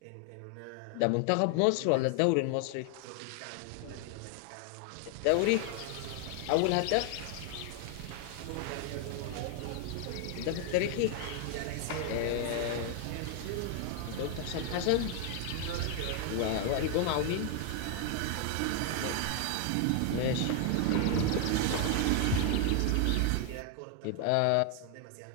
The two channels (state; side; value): different; both; correlation 0.00